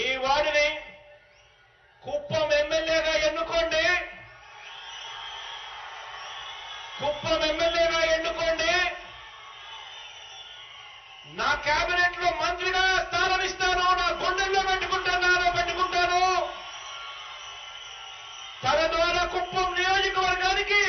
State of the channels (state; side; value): identical; both; correlation 1.00